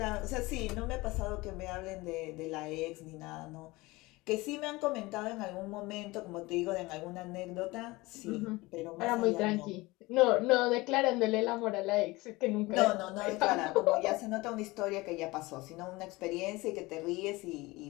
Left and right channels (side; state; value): right; quieter; 21.7 dB